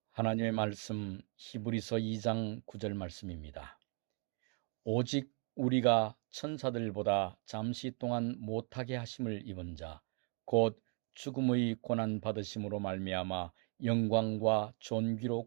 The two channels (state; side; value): quieter; left; 37.4 dB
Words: 하나님의 말씀 히브리서 2장 9절 말씀입니다. 오직 우리가 천사들보다 잠시 동안 못하게 하심을 입은 자 곧 죽음의 고난 받으심으로 말미암아 영광과 존귀로